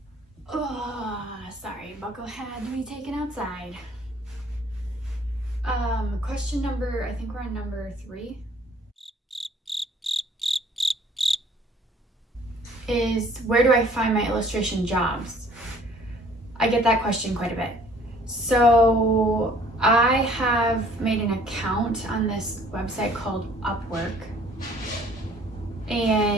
Oh, sorry, Buckle had to be taken outside. Question number, I think we're on number 3. Is where do I find my illustration jobs? I get that question quite a bit. So I have made an account on this website called Upwork,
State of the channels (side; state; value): both; normal; correlation 0.57